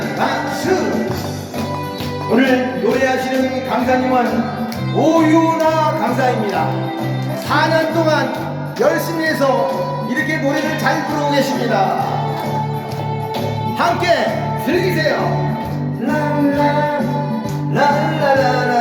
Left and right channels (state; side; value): identical; both; correlation 1.00